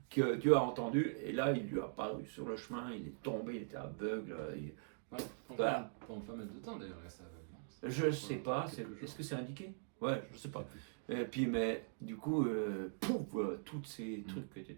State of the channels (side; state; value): left; silent; digital silence